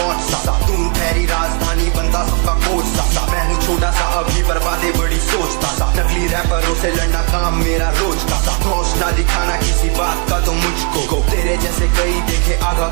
सा दून ठहरी राजधानी बनता सबका कोच सा मैं हूँ छोटा सा अभी पर बातें बड़ी सोचता सा नकली रैपरों से लड़ना काम मेरा रोज का सा होश ना दिखाना किसी बात का तो मुझको तेरे जैसे कई देखे आगा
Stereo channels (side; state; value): left; quieter; 34.8 dB